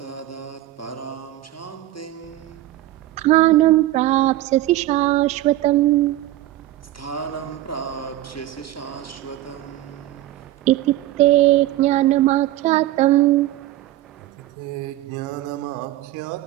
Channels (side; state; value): left; quieter; 15.4 dB